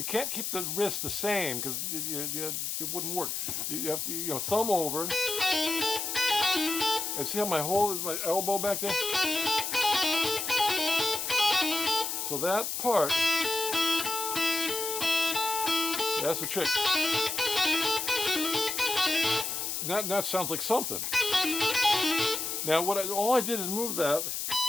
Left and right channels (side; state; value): left; noise; hiss, 3 dB below the sound